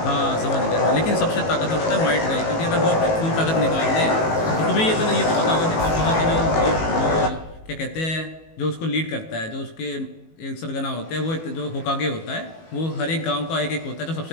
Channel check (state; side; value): late; right; 18 ms